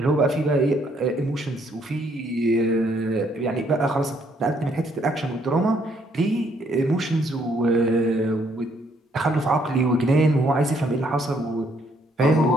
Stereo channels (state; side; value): normal; both; correlation 0.69